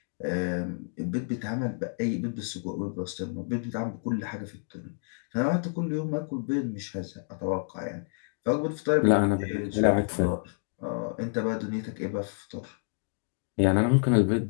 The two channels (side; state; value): right; silent; 58 dB below the other